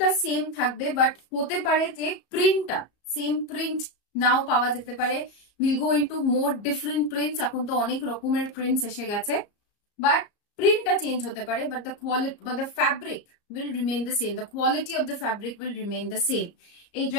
সেম থাকবে, বাট হতে পারে যে প্রিন্টটা সেম প্রিন্ট নাও পাওয়া যেতে পারে। Will go into more different prints, এখন তো অনেক রকমের প্রিন্টস এসে গেছে, বাট প্রিন্টটা চেঞ্জ হতে পারে, বাট দ্য কোয়ালিটি বা the fabric will remain the same, the quality of the fabric will remain the same. এই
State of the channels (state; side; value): late; right; 34 ms